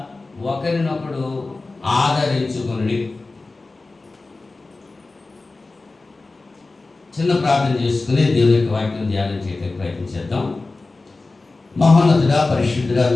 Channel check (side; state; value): right; quieter; 3.5 dB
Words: ఒకరినొకడు ఆదరించుకొనుడి. చిన్న ప్రార్థన చేసుకుని దేవుని యొక్క వాక్యం ధ్యానం చేయడానికి ప్రయత్నం చేద్దాం. మహోన్నతుడా, పరిశుద్ధుడా,